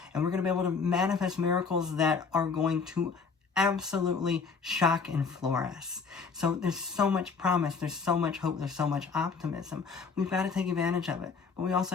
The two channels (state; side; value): quieter; right; 5.2 dB